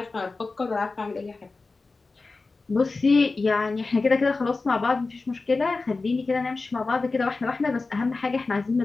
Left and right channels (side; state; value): right; quieter; 3.8 dB